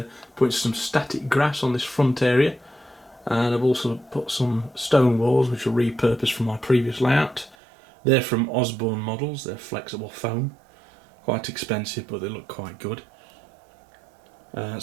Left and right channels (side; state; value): left; drops out; at 7.6 s